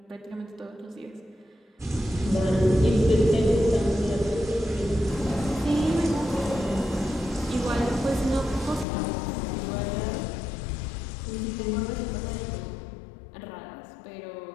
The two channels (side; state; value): right; drops out; at 8.8 s